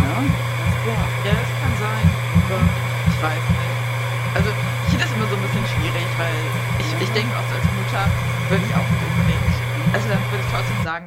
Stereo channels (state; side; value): identical; both; correlation 1.00